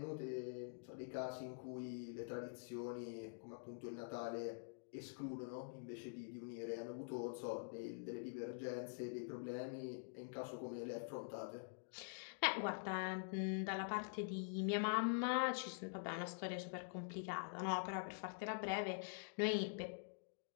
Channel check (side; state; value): right; silent; digital silence